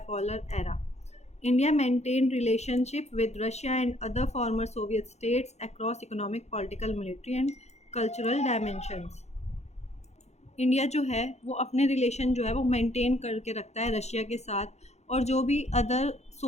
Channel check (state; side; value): late; right; 0.32 ms